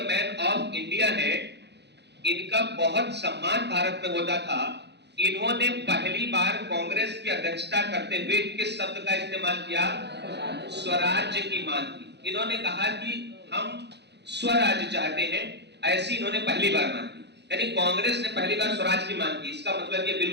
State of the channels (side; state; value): left; late; 0.50 ms